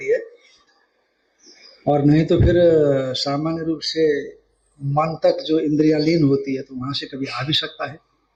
है, और नहीं तो फिर सामान्य रूप से मन तक जो इंद्रियां लीन होती है तो वहां से कभी आ भी सकता है।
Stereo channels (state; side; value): identical; both; correlation 1.00